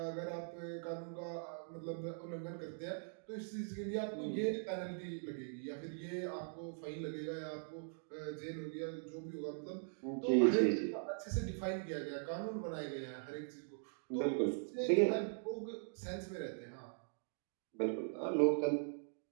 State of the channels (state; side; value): silent; left; digital silence